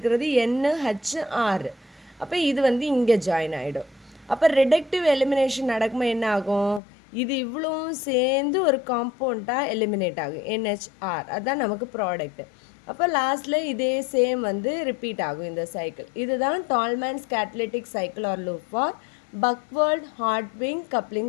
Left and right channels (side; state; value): right; drops out; at 6.8 s